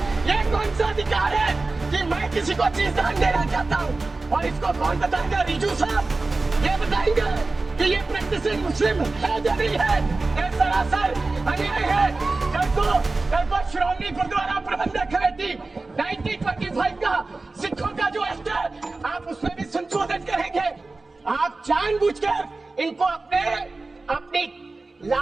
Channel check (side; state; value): left; quieter; 3.5 dB